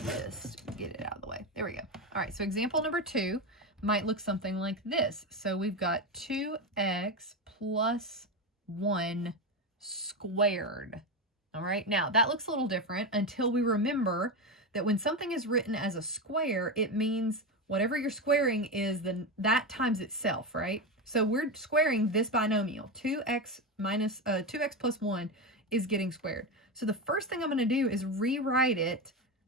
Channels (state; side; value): normal; both; correlation 0.15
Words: to get it out of the way. There we go. All right, so example number 2 might look something like this. So we've got 2x plus 1 squared. All right, now that looks a little different until we remember that when something is written as a square, it means whatever you're squaring is that times itself, right? So we're squaring this binomial. 2x plus 1 is getting squared. So the first thing I'm going to do is rewrite it